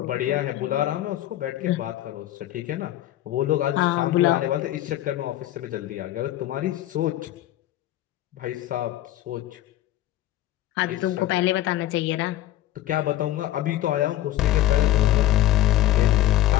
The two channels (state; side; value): quieter; right; 14.2 dB